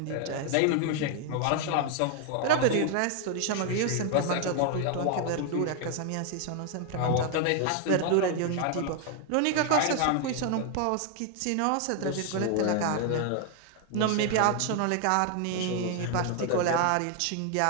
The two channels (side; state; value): both; different; correlation 0.00